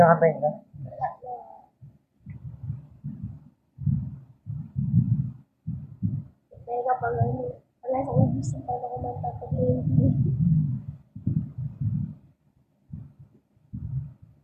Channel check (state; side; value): identical; both; correlation 1.00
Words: na. Wala na. Kaya kapag ano, wala sa ubus ang paano ko magtataglin.